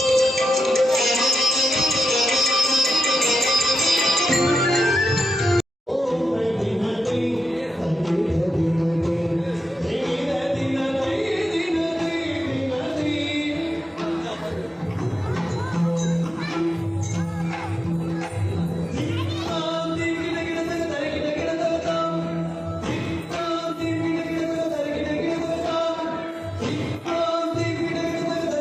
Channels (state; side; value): normal; both; correlation 0.89